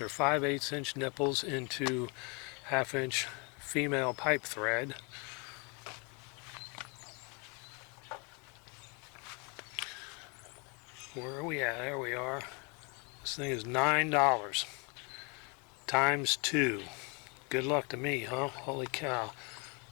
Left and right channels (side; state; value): right; quieter; 32.8 dB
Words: 5/8 inch nipples into 1/2 inch female pipe thread. Where are we at? There we are. This thing is $9 times 2. Good luck to me, huh? Holy cow.